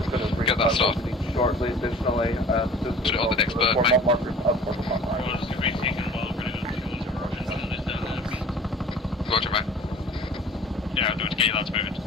going to bring that started shortly. Additionally, put it on the next bird, mate. Roger, mate. Yeah, I'm doing to get your lads moving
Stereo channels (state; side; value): normal; both; correlation 0.45